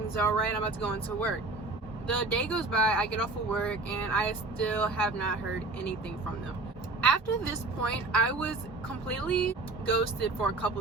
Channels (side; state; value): left; quieter; 3.3 dB